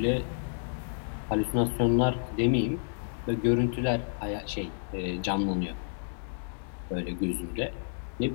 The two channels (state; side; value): silent; right; digital silence